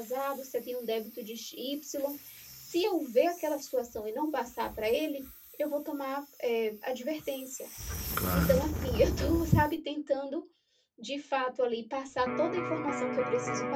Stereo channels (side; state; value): both; identical; correlation 1.00